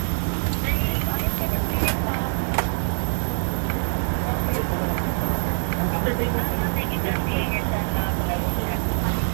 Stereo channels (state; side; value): silent; left; 62 dB below the other